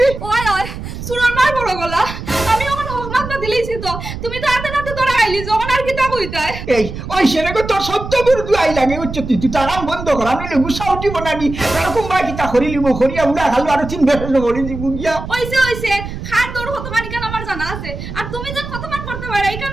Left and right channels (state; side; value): noise; right; rumble, 9 dB below the sound